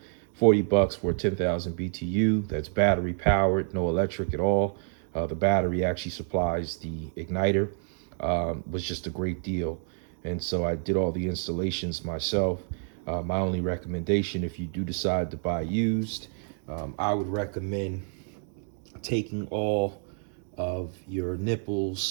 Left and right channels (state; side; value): silent; left; 59 dB below the other